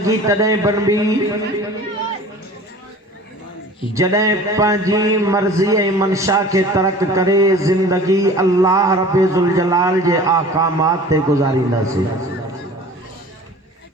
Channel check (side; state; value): both; normal; correlation 0.43